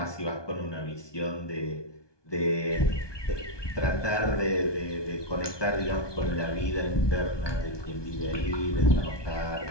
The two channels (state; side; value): late; right; 1.2 ms